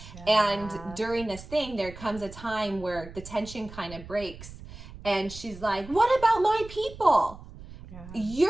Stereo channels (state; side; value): noise; right; rumble, 15 dB below the sound